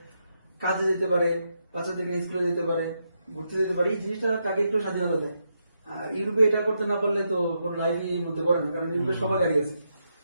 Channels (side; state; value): both; inverted; correlation -0.82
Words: কাজে যেতে পারে, বাচ্চাদের নিয়ে স্কুলে যেতে পারে, ঘুরতে যেতে পারে। এই জিনিসটা তাকে একটু স্বাধীনতা দেয়। আর ইউরোপে এটা করতে না পারলে তো কোনো লাইফই মধ্যে পড়ে না, কারণ ইউরোপে সবার গাড়ি আছে।